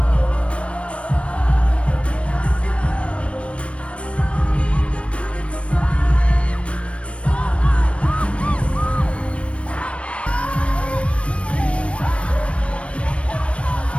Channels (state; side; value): late; right; 0.061 ms